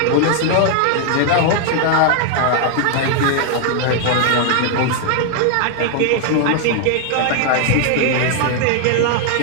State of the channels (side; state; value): both; different; correlation 0.00